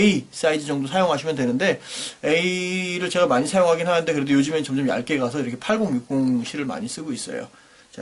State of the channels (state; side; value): identical; both; correlation 1.00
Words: 사이즈 정도 사용하시면 되는데, A를 제가 많이 사용하긴 하는데 그래도 요즘엔 점점 얇게 가서 이렇게 80, 60 실을 많이 쓰고 있어요.